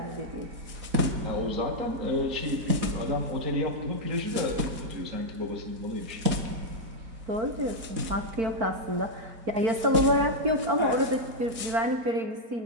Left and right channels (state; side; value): late; left; 4.2 ms